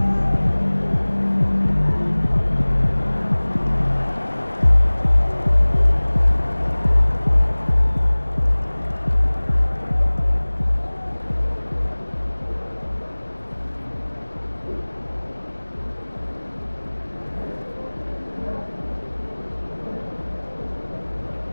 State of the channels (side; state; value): both; inverted; correlation -1.00